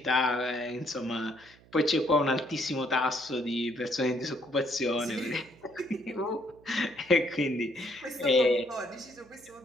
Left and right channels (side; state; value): right; noise; hum, 26 dB below the sound